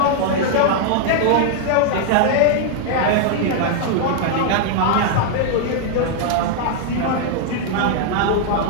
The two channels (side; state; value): both; different; correlation 0.00